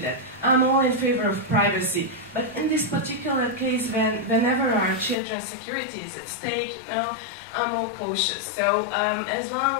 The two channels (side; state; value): right; drops out; at 5.2 s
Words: that I'm all in favor of privacy, but in this particular case, whenever our children's security is at stake, I'm more cautious. So as